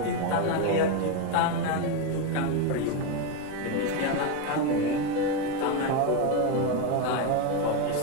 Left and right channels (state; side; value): different; both; correlation 0.03